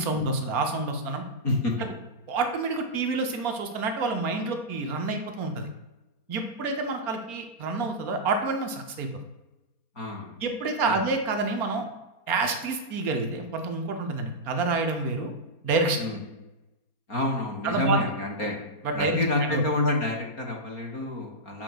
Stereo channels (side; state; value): right; late; 4.3 ms